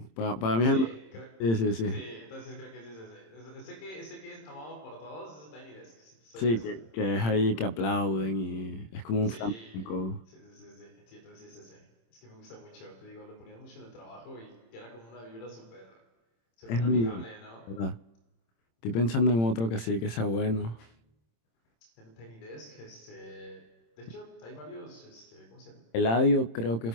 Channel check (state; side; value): late; right; 26 ms